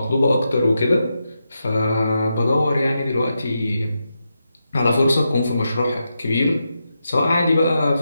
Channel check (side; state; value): both; inverted; correlation -0.86